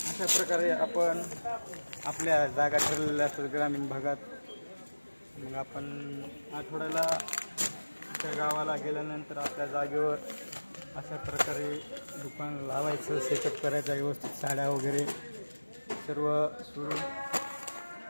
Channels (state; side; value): inverted; both; correlation -1.00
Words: अशा प्रकारे आपण आपल्या जागा ठरलेल्या असतात ग्रामीण भागात. मग आपण आठवड्याला त्या गावाला गेल्यानंतर आपल्या जागेवर अशा प्रकारे दुकान लावायचं, सेटअप करायचं व्यवस्थित, साड्या वगैरे सर्व सुरू.